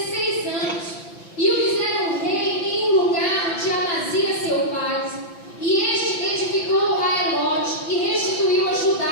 anos, e o fizeram rei em um lugar de Amazias seu pai. E este edificou a Elote e restituiu a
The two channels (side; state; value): right; late; 5.9 ms